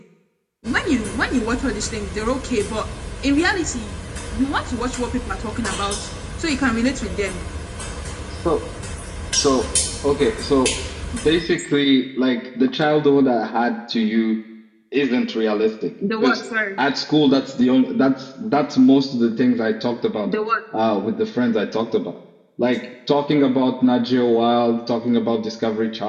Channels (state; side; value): identical; both; correlation 1.00